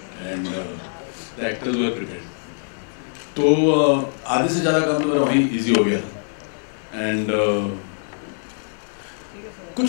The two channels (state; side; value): silent; right; digital silence